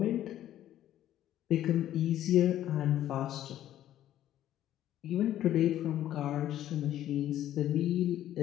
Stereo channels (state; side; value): quieter; right; 12.3 dB